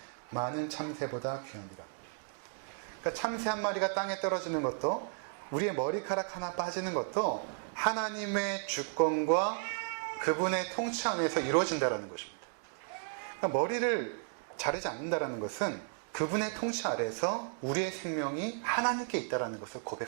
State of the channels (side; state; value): left; silent; 55 dB below the other